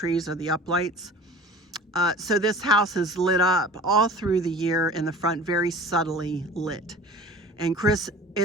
are the up lights. So this house is lit up all through the year in the front, very subtly lit. And Chris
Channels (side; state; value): both; normal; correlation 0.42